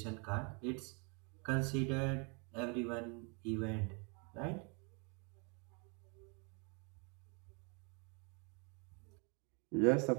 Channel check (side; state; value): left; quieter; 34.8 dB